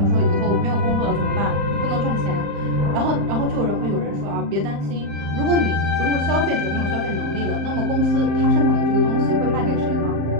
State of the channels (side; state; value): left; late; 35 ms